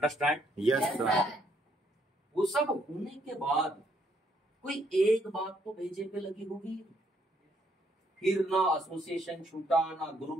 Yes sir. वो सब होने के बाद कोई एक बात तो भेजे पे लगी होगी। फिर ना एसोसिएशन छूटा, ना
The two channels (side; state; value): both; normal; correlation 0.71